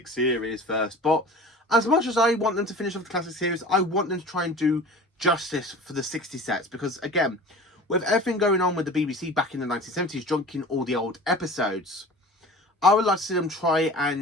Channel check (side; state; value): both; normal; correlation 0.39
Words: series first. But as much as I want them to finish off the classic series, I want them to try and do justice for the 60 sets, because again, with everything going on with the BBC back in the 1970s, junking all the old episodes, I would like to see them try